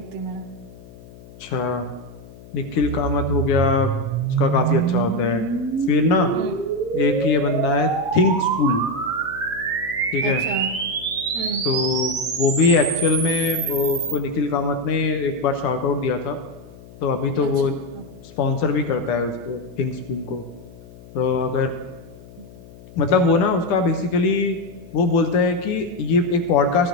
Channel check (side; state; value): left; noise; hum, 20 dB below the sound